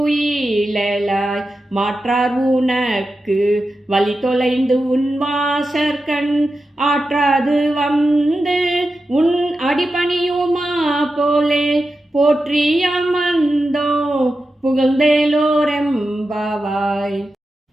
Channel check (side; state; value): both; normal; correlation 0.91